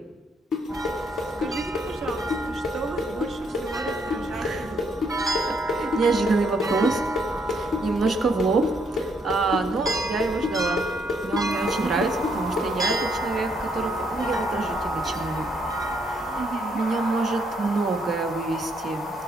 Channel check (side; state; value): both; normal; correlation 0.72